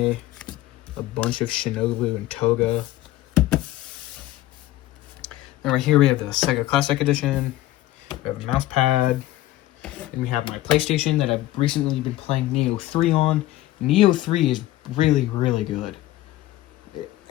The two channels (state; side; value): quieter; right; 15.6 dB